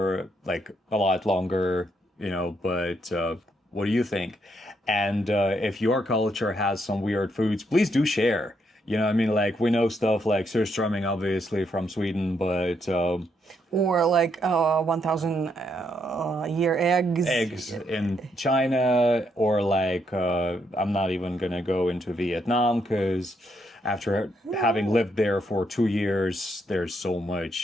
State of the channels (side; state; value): both; normal; correlation 0.76